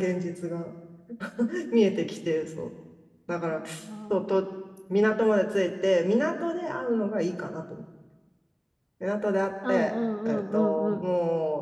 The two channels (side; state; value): both; identical; correlation 1.00